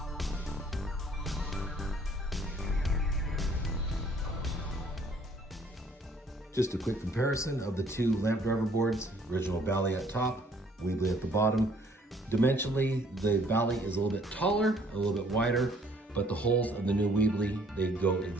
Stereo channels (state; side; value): normal; both; correlation 0.60